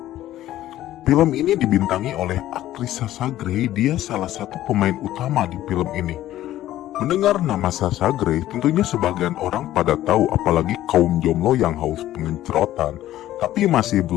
Film ini dibintangi oleh aktris Sasha Grey, dia salah satu pemain utama di film ini. Mendengar nama Sasha Grey, tentunya sebagian orang pada tahu, apalagi kaum jomblo yang haus pengencerotan. Tapi masih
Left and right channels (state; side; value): quieter; right; 13.7 dB